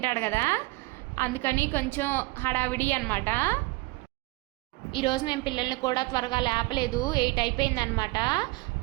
కదా, అందుకని కొంచెం హడావిడి అనమాట. ఈరోజు మేము పిల్లల్ని కూడా త్వరగా లేపలేదు, 8 అయిపోయిందనమాట.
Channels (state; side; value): quieter; left; 23.3 dB